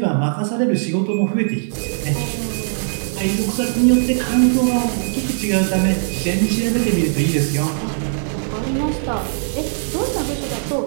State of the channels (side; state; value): left; silent; digital silence